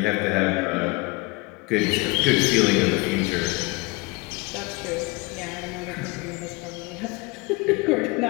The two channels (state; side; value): quieter; right; 25.7 dB